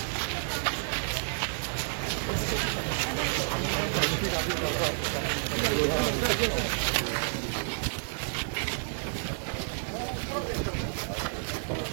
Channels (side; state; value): left; silent; digital silence